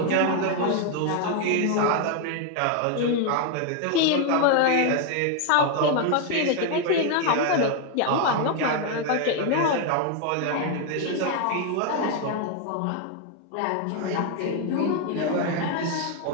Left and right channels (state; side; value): different; both; correlation 0.01